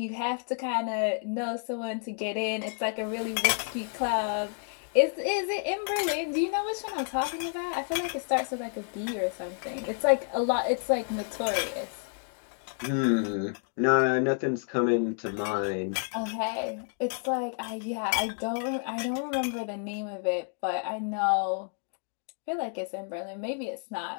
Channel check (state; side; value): silent; right; 58 dB below the other